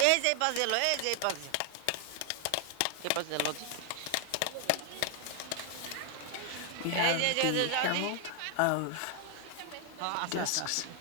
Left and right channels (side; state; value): both; different; correlation 0.00